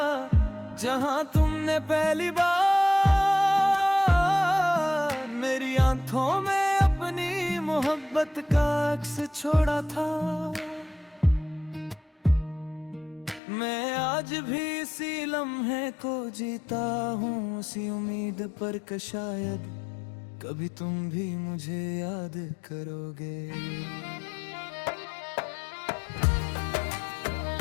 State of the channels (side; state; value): right; drops out; at 13.4 s